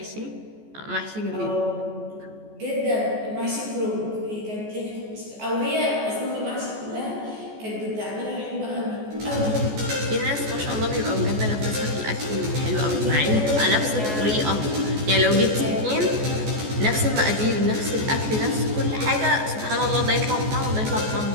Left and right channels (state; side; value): late; left; 14 ms